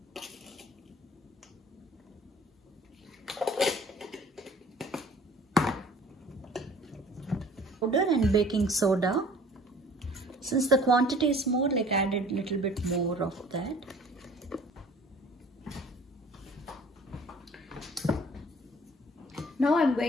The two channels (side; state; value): both; normal; correlation 0.51